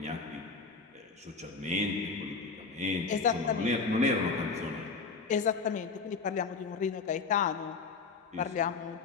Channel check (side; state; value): right; quieter; 4.8 dB